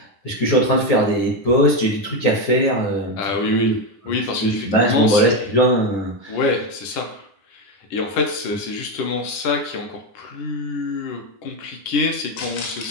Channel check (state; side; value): late; right; 10 ms